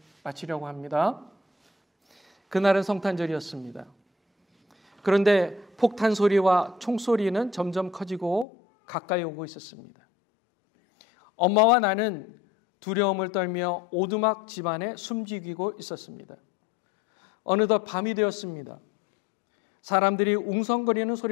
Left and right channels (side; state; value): right; drops out; at 8.5 s